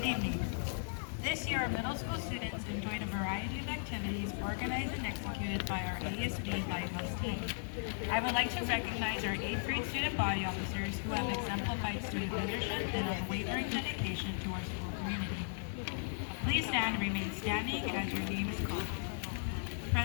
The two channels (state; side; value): silent; right; digital silence